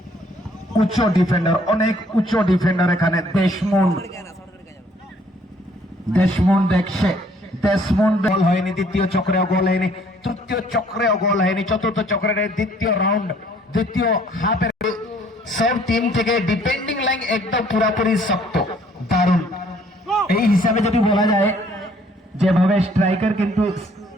উচ্চ ডিফেন্ডার অনেক উচ্চ ডিফেন্ডার এখানে দেশমুন দেখছে দেশমুন গোল হয়নি দ্বিতীয় চক্রেও গোল হয়নি তৃতীয় চক্রেও গোল হয়নি চতুর্থ চক্রের দ্বিতীয় রাউন্ড দ্বিতীয় হাফের সব টিম থেকে ডিফেন্ডিং লাইন একদম পুরোপুরি শক্ত দারুণ এই হিসাবে যদি বলা যায় যেভাবে স্ট্রাইকার কিন্তু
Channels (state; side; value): normal; both; correlation 0.61